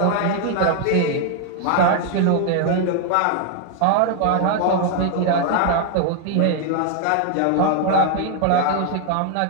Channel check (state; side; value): different; both; correlation 0.00